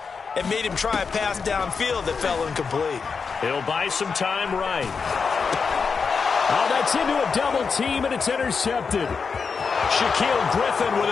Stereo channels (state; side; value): quieter; right; 5.4 dB